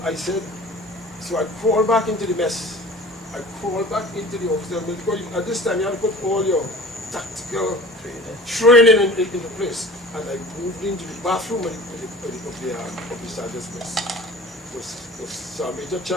I said, so I crawled back into the mess. I crawled back into the officer, because at this time you have to put all your tactical training into place. And I moved into the bathroom of the sergeant's mess. It was Sir Major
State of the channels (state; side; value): normal; both; correlation 0.42